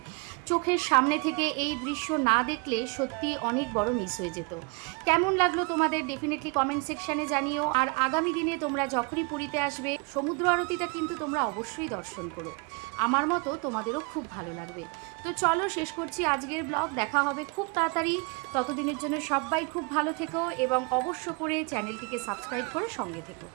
চোখের সামনে থেকে এই দৃশ্য না দেখলে সত্যি অনেক বড় মিস হয়ে যেত। কেমন লাগলো তোমাদের ডেফিনেটলি কমেন্ট সেকশানে জানিও। আর আগামী দিনে তোমরা যখনই পুরীতে আসবে, সমুদ্র আরতিটা কিন্তু তোমরা অবশ্যই দর্শন করো। আমার মতো তোমাদেরও খুব ভালো লাগবে। তো চলো, শেষ করছি আজকের ব্লগ। দেখা হবে খুব তাড়াতাড়ি। ততদিনের জন্য সবাই খুব ভালো থেকো এবং অবশ্য করে চ্যানেলটিকে সাবস্ক্রাইব করে সঙ্গে থেকো।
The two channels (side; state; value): left; quieter; 31.3 dB